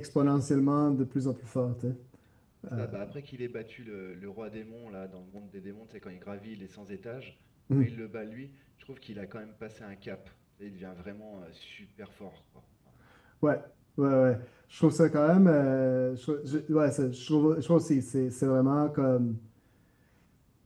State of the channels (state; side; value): identical; both; correlation 1.00